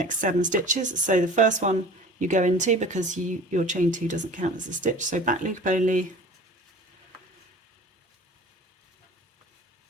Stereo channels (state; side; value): normal; both; correlation 0.42